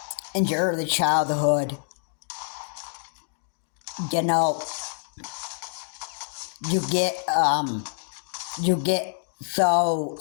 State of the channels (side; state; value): right; silent; digital silence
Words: in your early childhood,